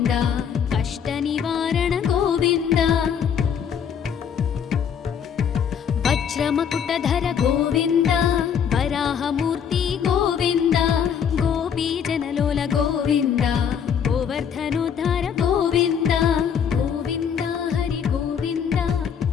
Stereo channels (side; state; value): right; quieter; 7.7 dB